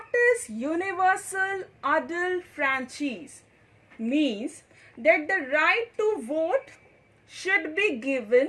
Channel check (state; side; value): identical; both; correlation 1.00